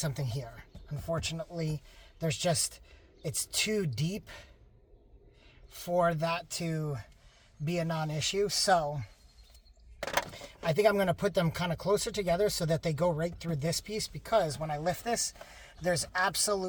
here. Unfortunately, there's just, it's too deep for that to be a non-issue. So I think I'm going to put them kind of closer together so that they go right through this piece, because when I lift this, there's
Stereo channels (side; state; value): both; identical; correlation 1.00